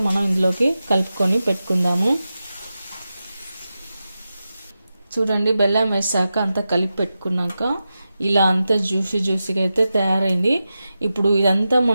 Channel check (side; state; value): both; inverted; correlation -0.92